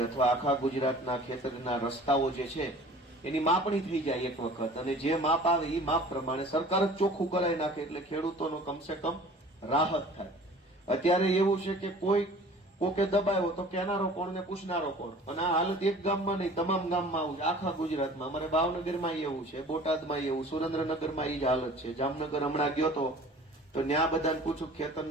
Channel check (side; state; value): both; normal; correlation 0.46